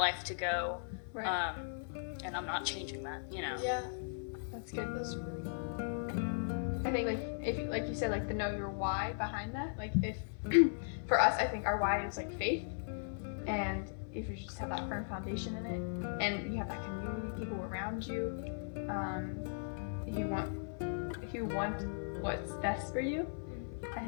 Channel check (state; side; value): silent; right; 53 dB below the other